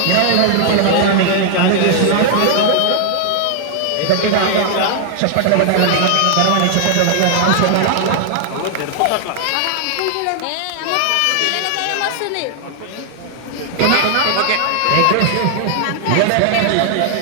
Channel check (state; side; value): different; both; correlation 0.00